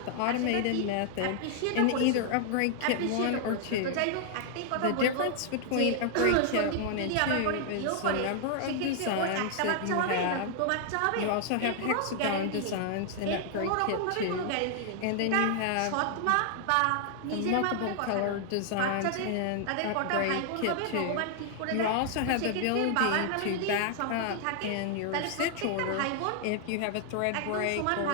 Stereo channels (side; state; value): both; different; correlation 0.00